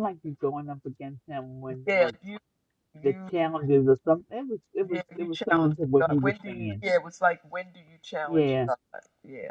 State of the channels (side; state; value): both; identical; correlation 1.00